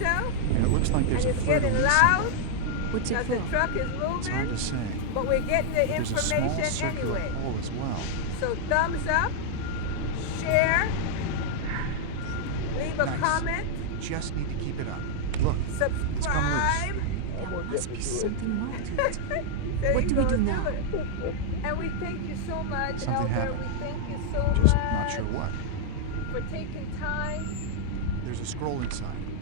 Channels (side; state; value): both; different; correlation -0.01